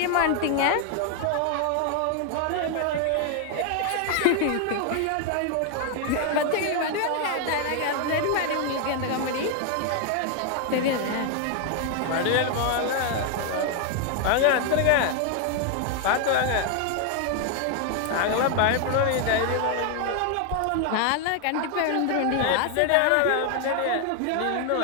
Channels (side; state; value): both; different; correlation 0.00